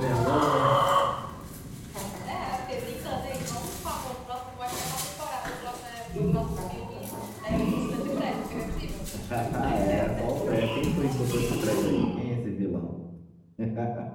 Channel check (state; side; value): identical; both; correlation 1.00